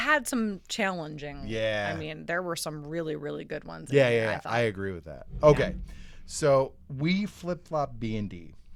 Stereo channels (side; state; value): both; identical; correlation 1.00